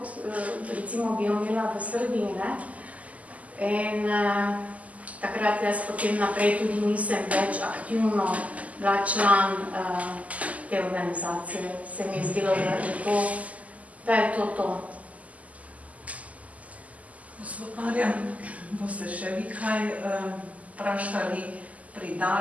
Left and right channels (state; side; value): late; left; 0.072 ms